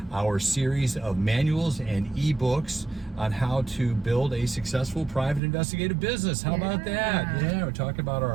our series of manuals and ebooks on how to build a successful private investigative business. How about that? Yeah, we're talking about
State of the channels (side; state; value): left; drops out; at 5.4 s